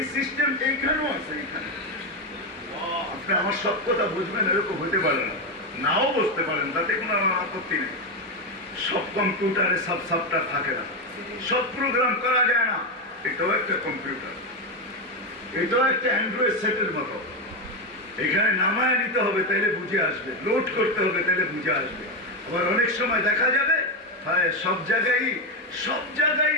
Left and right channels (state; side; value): normal; both; correlation 0.09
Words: সিস্টেম এইখানেও আছে। এখানে আপনি আমার সব কথা বুঝবেন এরকম হতে পারে না, নাও বসতে পারেন, তাতে কোনো আপত্তি নেই। সব কম্পিউটারে সব সফটওয়্যার থাকে না, সব প্রোগ্রাম করা যায় না। এটাও একটা কম্পিউটার, এটাও একটা অ্যান্ড্রয়েড সেটের মতো। এখানে নামায় নিতে হবে তাইলে বুঝে আসবে, লোড করতে হবে তাইলে বুঝে আসবে। আবার অনেক সময় দেখা যাবে সব জায়গায়